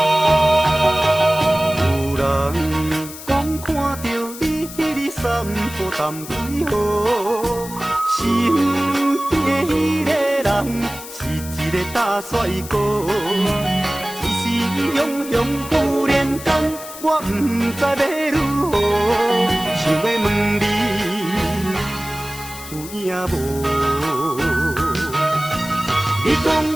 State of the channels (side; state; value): left; noise; hiss, 13 dB below the sound